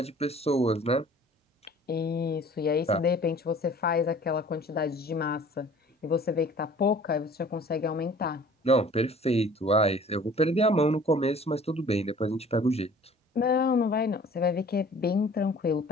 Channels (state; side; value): normal; both; correlation 0.49